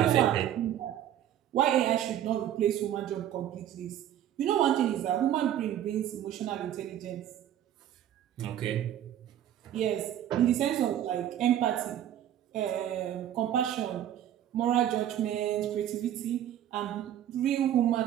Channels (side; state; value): left; quieter; 11.2 dB